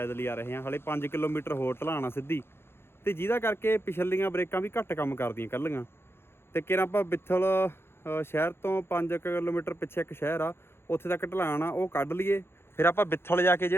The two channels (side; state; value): right; late; 0.11 ms